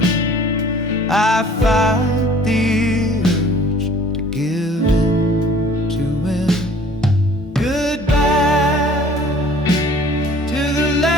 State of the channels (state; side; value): normal; both; correlation 0.51